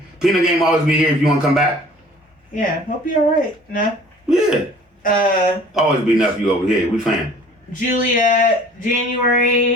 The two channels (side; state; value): both; normal; correlation 0.50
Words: Peanut Game always be here if you want to come back. Yeah, hope you're alright. No? Yeah. Always be enough you over here. We fan. Juliet,